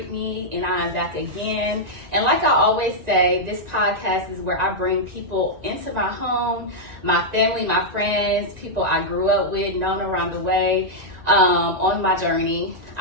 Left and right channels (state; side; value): late; left; 1.9 ms